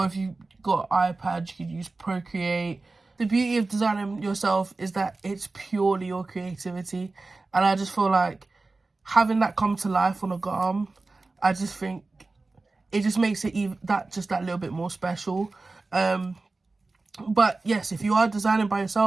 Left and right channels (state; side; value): quieter; left; 3.5 dB